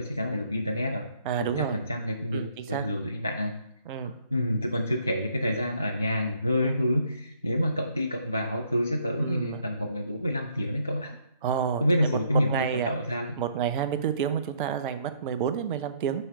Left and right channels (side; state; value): both; inverted; correlation -0.66